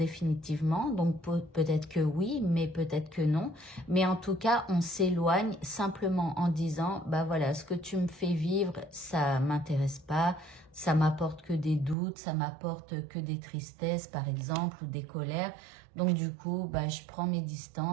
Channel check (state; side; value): drops out; left; at 12.0 s